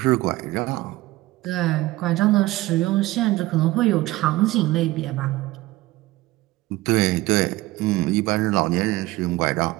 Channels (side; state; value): left; quieter; 18.2 dB